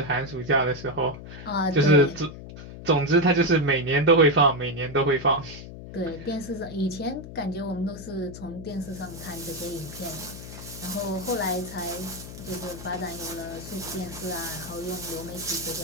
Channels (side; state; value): left; noise; hum, 12 dB below the sound